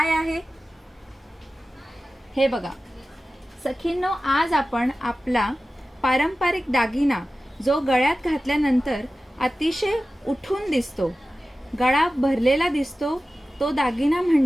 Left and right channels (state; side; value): normal; both; correlation 0.95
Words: आहे. हे बघा सखींनो, आज आपण आपला पारंपरिक दागिना जो गळ्यात घातल्यानंतर अतिशय उठून दिसतो, गळा भरलेला दिसतो, तो दागिना